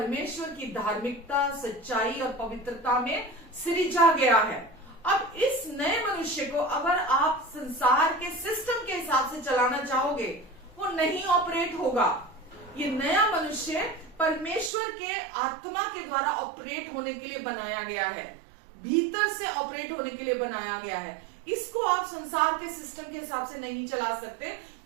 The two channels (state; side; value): drops out; left; at 14.7 s